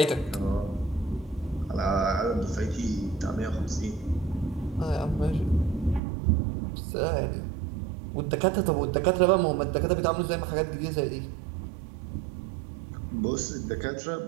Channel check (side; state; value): left; drops out; at 6.0 s